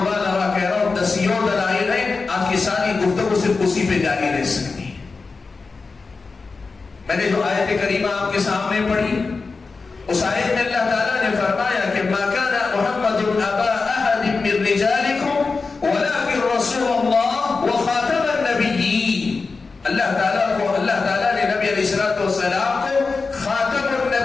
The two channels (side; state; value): right; quieter; 4.3 dB